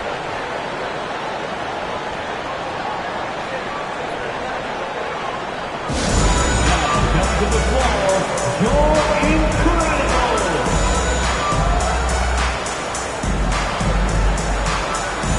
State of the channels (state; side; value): identical; both; correlation 1.00